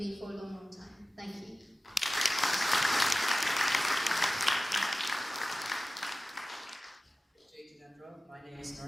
for a long, long time. Thank you. My name is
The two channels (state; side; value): normal; both; correlation 0.96